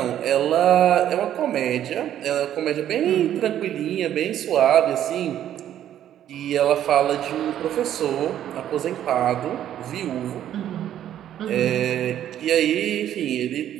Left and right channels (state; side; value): quieter; left; 11.1 dB